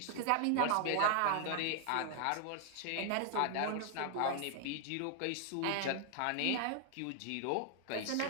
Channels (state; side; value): different; both; correlation 0.00